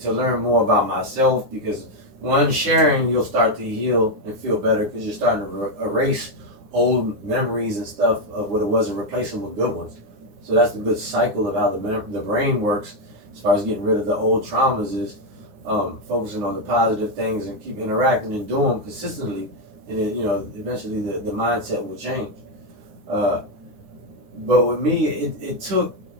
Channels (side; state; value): left; late; 9.8 ms